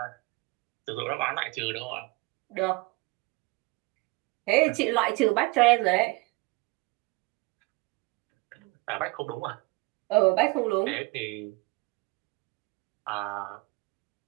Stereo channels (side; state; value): left; quieter; 25.2 dB